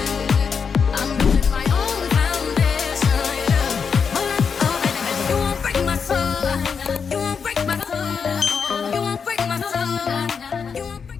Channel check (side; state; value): right; quieter; 6.1 dB